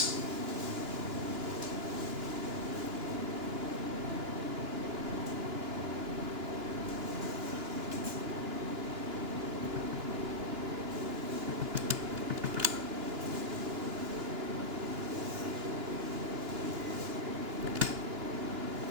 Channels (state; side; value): late; left; 2.9 ms